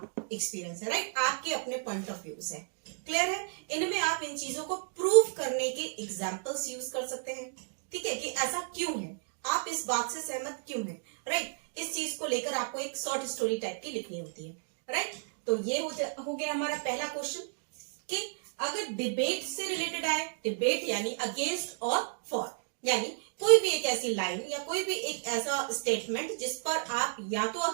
एक्सपीरियंस है, राइट, आपके अपने पॉइंट ऑफ व्यूज है। क्लियर है? इनमें आप इन चीजों को प्रूव करने के एग्जाम्पल्स यूज कर सकते हैं, ठीक है, कि ऐसा क्यों है, आप इस बात से सहमत क्यों हैं, राइट। इस चीज को लेकर आपको एक शॉर्ट स्टोरी टाइप की लिखनी होती है, राइट। तो ये हो गया हमारा पहला क्वेश्चन कि अगर डिबेट से रिलेटेड आए, डिबेट यानी अगेंस्ट और फॉर, यानी कोई भी एक ऐसी लाइन या कोई भी एक ऐसा स्टेटमेंट जिस पर आप या तो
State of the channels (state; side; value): silent; left; digital silence